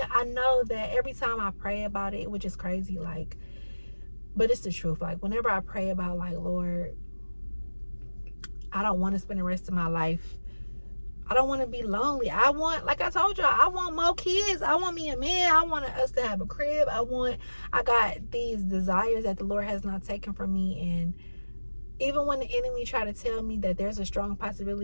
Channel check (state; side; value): inverted; both; correlation -1.00